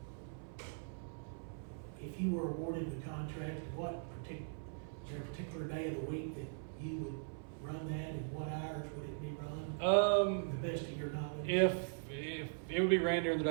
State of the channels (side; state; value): left; silent; 51 dB below the other